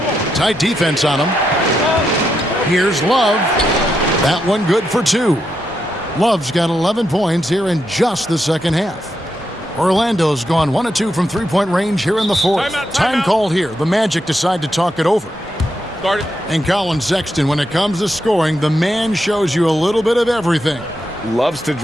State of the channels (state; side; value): normal; both; correlation 0.83